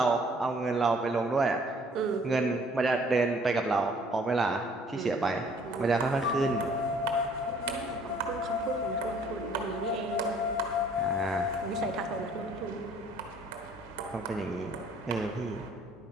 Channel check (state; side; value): normal; both; correlation 0.58